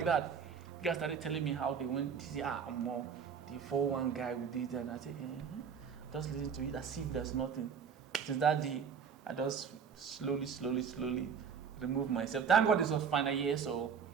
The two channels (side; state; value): left; quieter; 6.8 dB